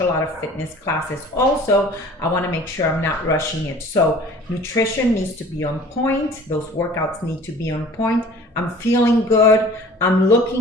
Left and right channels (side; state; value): both; normal; correlation 0.47